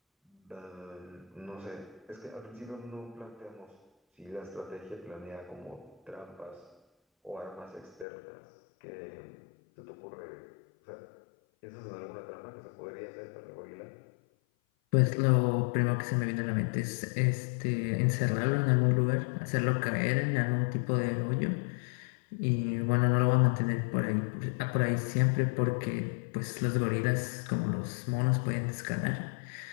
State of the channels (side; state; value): right; drops out; at 8.1 s